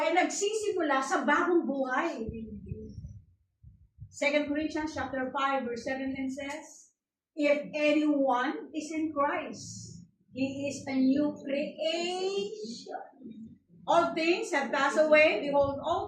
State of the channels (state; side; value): identical; both; correlation 1.00